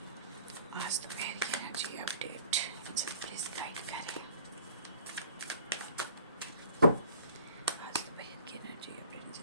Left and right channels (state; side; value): inverted; both; correlation -0.52